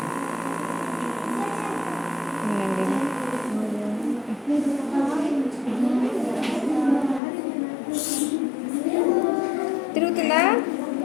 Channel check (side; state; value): right; drops out; at 7.2 s